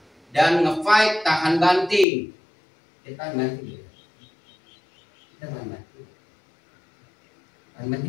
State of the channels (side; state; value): right; drops out; at 2.1 s